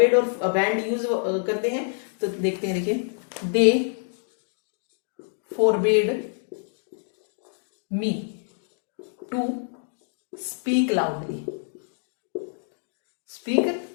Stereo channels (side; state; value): right; silent; digital silence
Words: और बैंड यूज करते हैं, तो देखते हैं। देखिए, they forbid me to speak loudly, speak